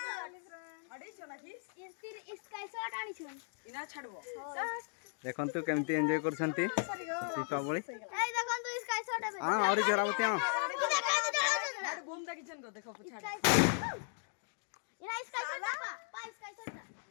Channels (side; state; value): right; silent; 53 dB below the other